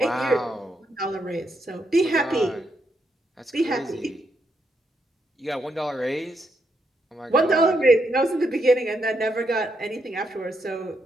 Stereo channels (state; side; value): normal; both; correlation 0.79